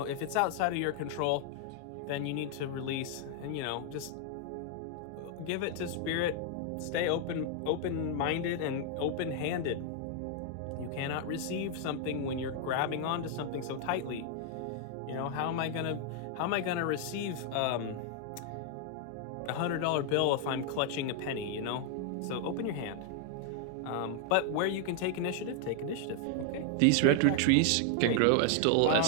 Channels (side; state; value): both; different; correlation 0.00